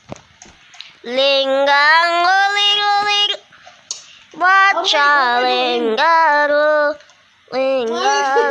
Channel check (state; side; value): identical; both; correlation 1.00